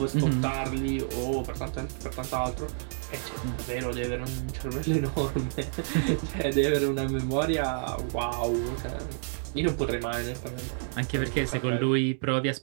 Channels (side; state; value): left; silent; digital silence